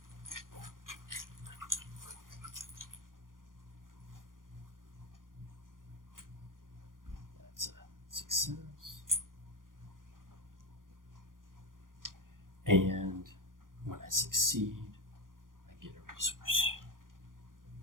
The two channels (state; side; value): late; left; 0.90 ms